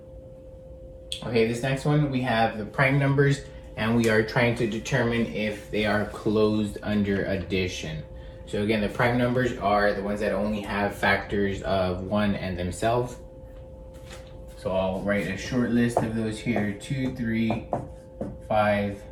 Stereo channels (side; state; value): both; identical; correlation 1.00